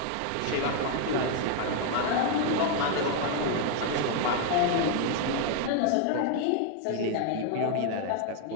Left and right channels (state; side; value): different; both; correlation 0.00